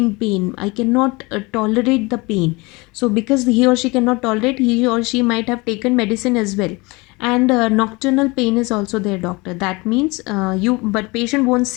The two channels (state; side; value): quieter; right; 25.2 dB